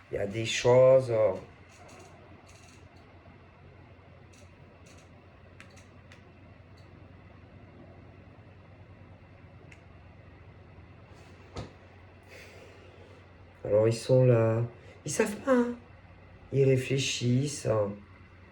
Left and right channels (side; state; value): both; identical; correlation 1.00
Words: il y a des choses. Alors ils sont là. Ils savent pas. Hein. Ils réfléchissent. Hein.